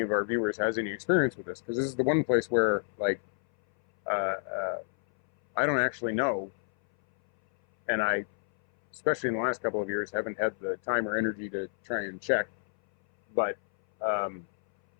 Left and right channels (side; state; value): right; silent; 58 dB below the other